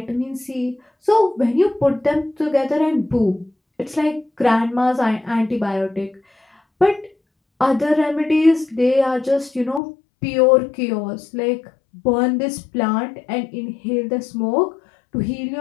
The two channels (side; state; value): right; drops out; at 9.8 s